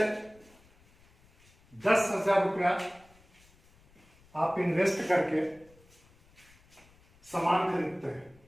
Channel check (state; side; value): noise; left; rumble, 29 dB below the sound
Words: 10,000 रुपया आप इन्वेस्ट करके सामान खरीदते हैं,